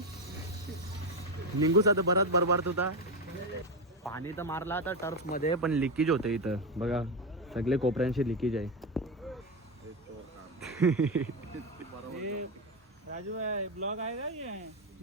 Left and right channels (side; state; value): both; normal; correlation 0.12